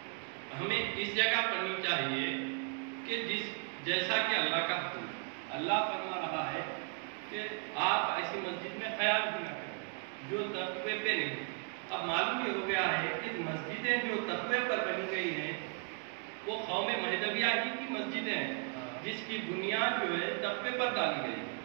ہمیں اس جگہ پڑھنی چاہیے کہ جیسا کہ اللہ کا حکم ہے۔ اللہ فرما رہا ہے کہ آپ ایسی مسجد میں خیال بھی نہ کریں جو تقوی پہ نہیں۔ اب معلوم یہ ہو گیا ہے کہ مسجدیں جو تقوی پر بنی گئی ہیں وہ قوم مہدویہ ہی کی مسجدیں ہیں، جس کی بنیاد جو ہے تقوی پر ڈالی گئی،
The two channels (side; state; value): left; quieter; 39.5 dB